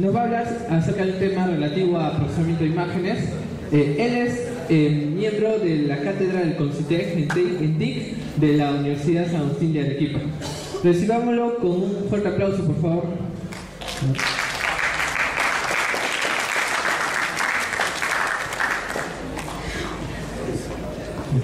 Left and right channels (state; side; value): identical; both; correlation 1.00